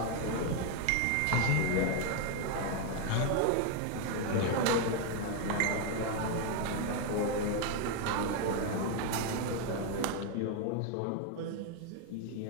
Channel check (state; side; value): different; both; correlation 0.01